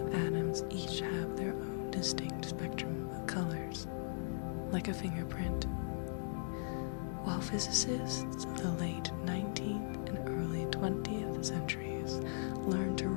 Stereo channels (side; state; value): right; silent; 52 dB below the other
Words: atoms each have their own distinct spectrum of colors, like a fingerprint. While physicists of the late 19th and early 20th centuries learned to